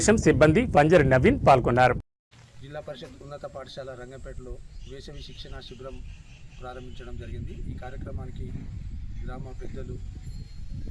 సిబ్బంది పంజరి నవీన్ పాల్గొన్నారు. జిల్లా పరిషత్ ఉన్నత పాఠశాల రంగంపేటలో వేసవి శిక్షణ శిబిరం ప్రారంభించడం జరిగింది. ఈ కార్యక్రమానికి గ్రామ పెద్దలు,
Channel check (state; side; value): identical; both; correlation 1.00